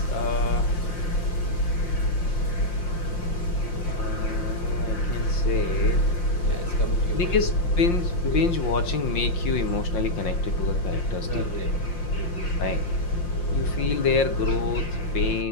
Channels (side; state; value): right; late; 5.7 ms